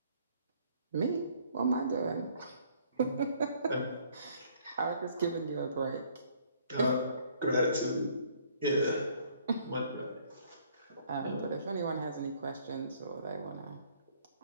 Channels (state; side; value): inverted; both; correlation -0.61